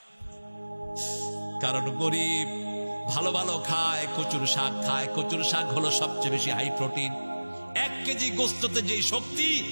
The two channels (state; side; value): inverted; both; correlation -1.00